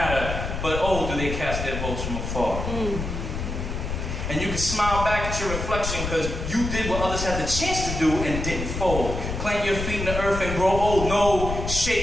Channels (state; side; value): noise; left; rumble, 4 dB below the sound